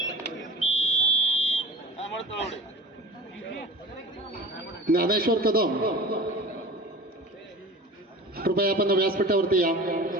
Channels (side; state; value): both; normal; correlation 0.37